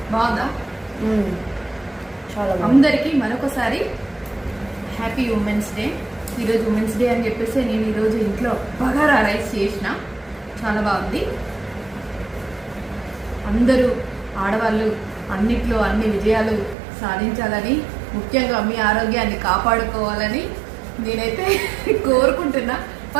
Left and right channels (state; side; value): drops out; left; at 16.8 s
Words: బాగుందా? చాలా. అందరికీ మరొకసారి హ్యాపీ ఉమెన్స్ డే. ఈరోజు ఉమెన్స్ డే అని చెప్పేసి నేను ఈరోజు ఇంట్లో బగారా రైస్ చేసిన. చాలా బాగుంది. అందరూ ఆడవాళ్ళు అన్నిట్లో అన్ని విజయాలు సాధించాలని, ముఖ్యంగా మీ ఆరోగ్యాన్ని కాపాడుకోవాలని నేనైతే కోరుకుంటున్నా.